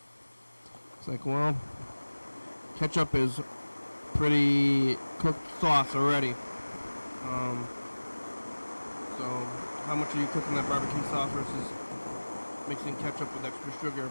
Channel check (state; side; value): inverted; both; correlation -1.00